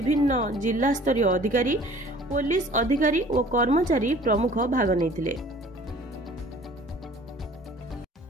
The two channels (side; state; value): both; normal; correlation 0.50